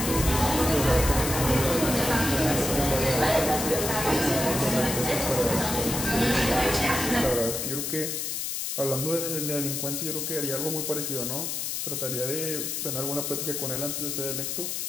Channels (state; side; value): noise; left; hiss, 3 dB below the sound